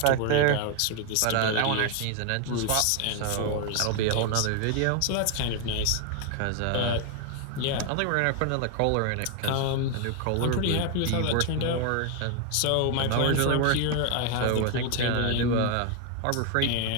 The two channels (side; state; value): both; different; correlation 0.01